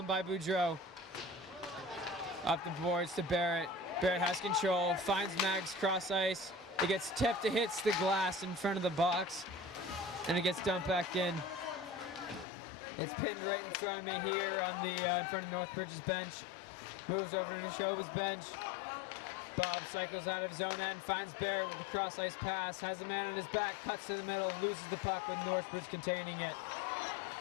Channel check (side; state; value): right; drops out; at 12.5 s